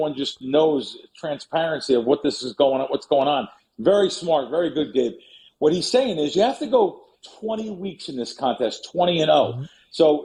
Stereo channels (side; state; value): both; identical; correlation 1.00